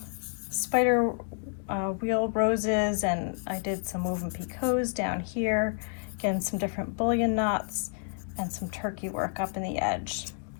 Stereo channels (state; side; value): silent; right; 58 dB below the other